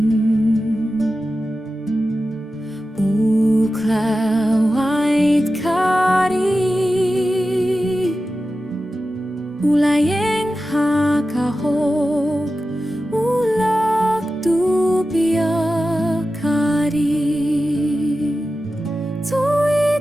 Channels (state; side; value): normal; both; correlation 0.93